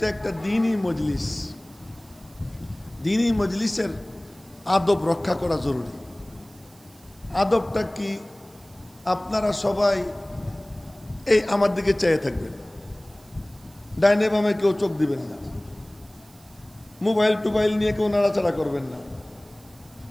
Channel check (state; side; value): noise; right; hiss, 27 dB below the sound